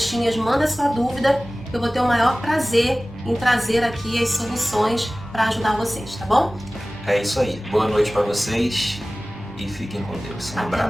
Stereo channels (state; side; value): normal; both; correlation 0.98